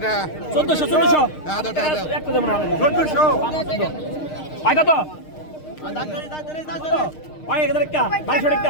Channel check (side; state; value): right; late; 6.5 ms